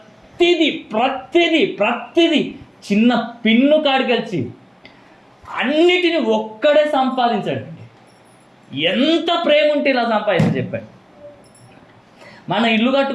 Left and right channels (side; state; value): both; identical; correlation 1.00